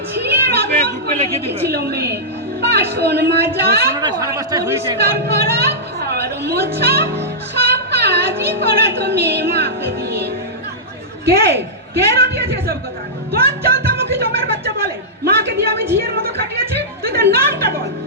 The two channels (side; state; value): both; normal; correlation -0.13